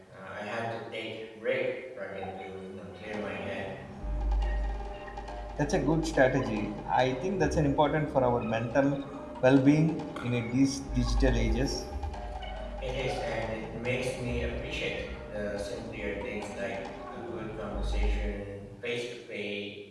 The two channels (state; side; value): identical; both; correlation 1.00